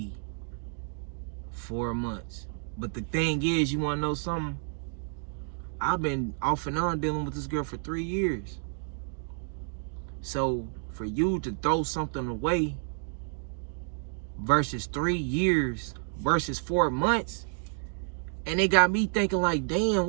4 months. But the thing is, you wanna know something? I've been off and on dealing with this girl for 3 years. So for you to throw something away versus 3 years versus 4 months, and it got me thinking like, damn,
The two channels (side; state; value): left; silent; 58 dB below the other